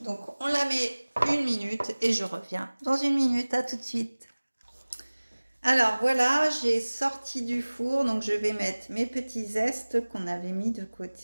Donc on la met 1 minute et je reviens dans 1 minute. À tout de suite. Alors voilà, j'ai sorti du four, donc je vais mettre mes petits zestes qu'on avait mis de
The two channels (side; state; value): both; inverted; correlation -1.00